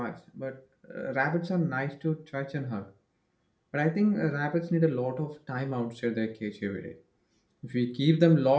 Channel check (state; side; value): identical; both; correlation 1.00